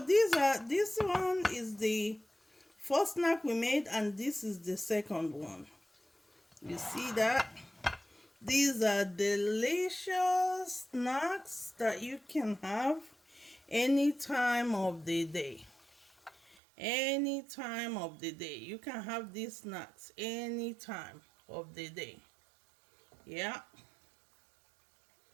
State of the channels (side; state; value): left; drops out; at 16.6 s